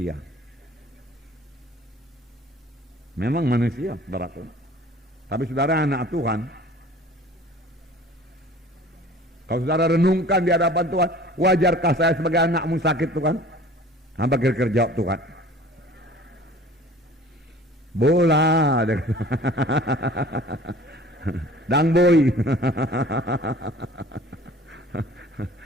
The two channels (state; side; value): normal; both; correlation 0.47